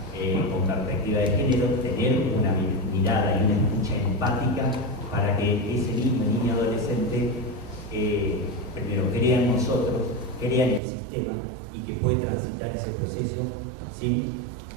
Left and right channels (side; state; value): left; drops out; at 10.8 s